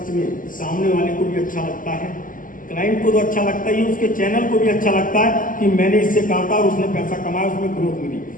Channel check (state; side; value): late; right; 0.39 ms